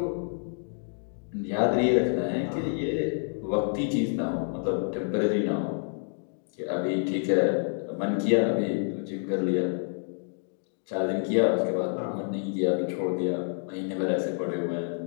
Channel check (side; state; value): right; silent; digital silence